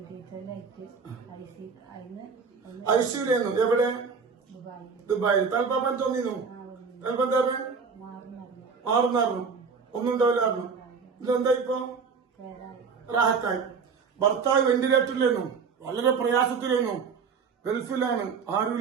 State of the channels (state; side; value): quieter; left; 5.5 dB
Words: ഐശ്വര്യെന്നു. എവിടെ? ദുബായിൽ. തൽപ്പാപ്പൻ തോന്നിന്നു. തൽപ്പം എന്താ മാറുന്നായിരുന്നു, ഒന്നും ഉണ്ടാവില്ലായിരുന്നു. ഇതെന്താ ഇപ്പൊ? റാഹത്തായി. ഭർത്താവ് വെന്റിലേറ്ററിലായിരുന്നു, വളരെ പ്രയാസത്തിലായിരുന്നു, ഗൾഫിലാണ്,